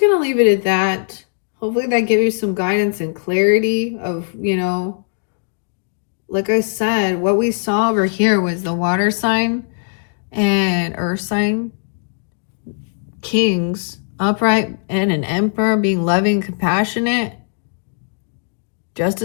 going to leave it at that. Hopefully that gives you some guidance and clarity of, like I said, what we saw over here was the water sign and earth sign, kings, upright, and an emperor being loving, compassionate.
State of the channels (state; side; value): silent; right; digital silence